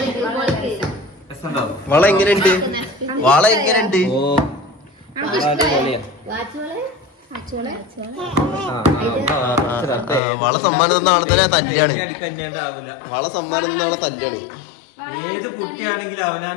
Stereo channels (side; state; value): right; drops out; at 10.2 s